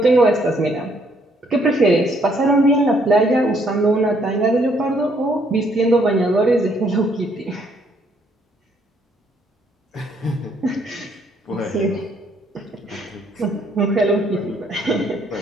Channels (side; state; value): both; normal; correlation 0.68